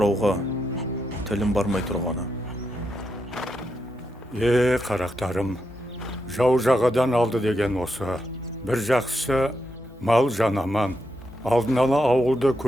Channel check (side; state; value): both; normal; correlation 0.83